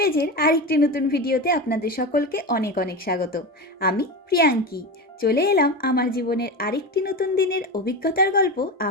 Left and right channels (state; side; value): normal; both; correlation 0.22